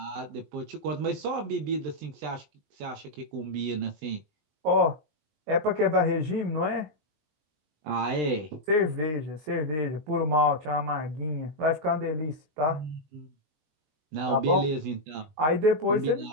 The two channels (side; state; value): left; late; 20 ms